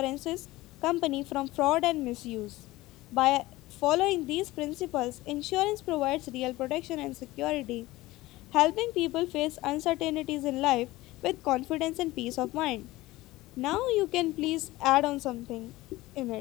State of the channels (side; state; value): right; quieter; 18.7 dB